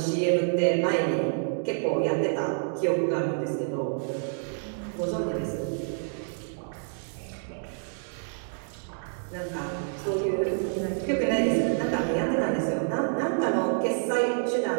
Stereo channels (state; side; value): silent; left; digital silence